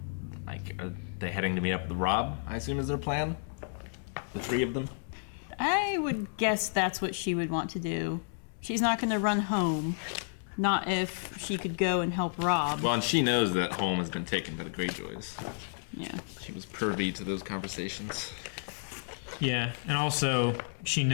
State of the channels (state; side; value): silent; right; digital silence